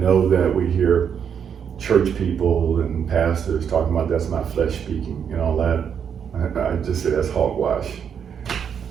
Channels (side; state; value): left; quieter; 7.7 dB